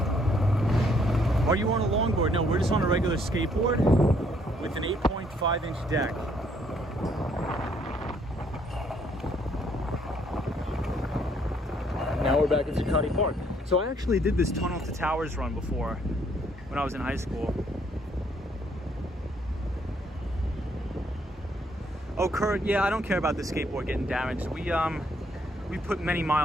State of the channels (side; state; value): both; normal; correlation 0.67